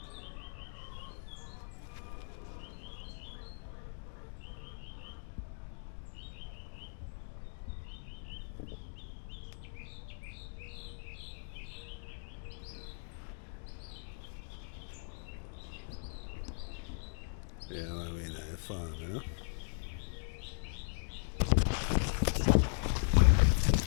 Yeah, I mean, fun, you know?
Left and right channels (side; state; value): right; silent; digital silence